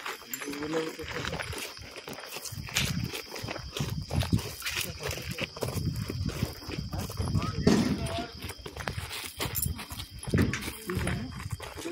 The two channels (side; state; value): both; identical; correlation 1.00